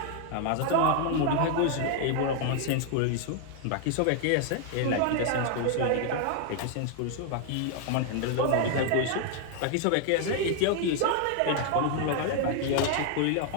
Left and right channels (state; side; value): different; both; correlation 0.00